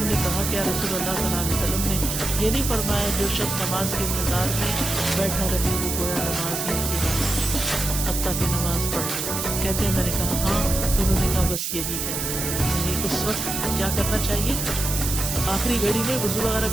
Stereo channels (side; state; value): right; noise; hiss, 3 dB below the sound